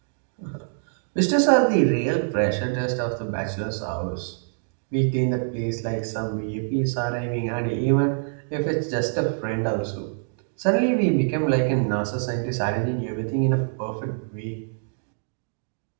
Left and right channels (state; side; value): silent; left; digital silence